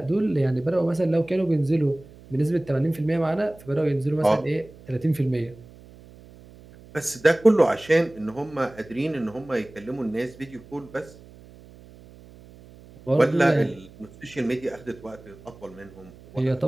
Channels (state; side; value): noise; right; hum, 22 dB below the sound